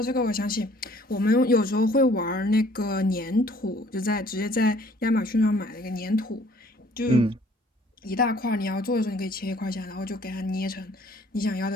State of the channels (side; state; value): both; normal; correlation 0.57